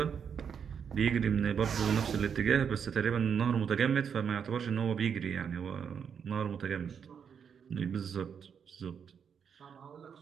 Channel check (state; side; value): quieter; left; 7.2 dB